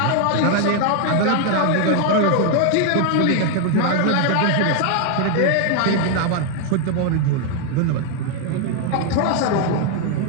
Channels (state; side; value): different; both; correlation 0.00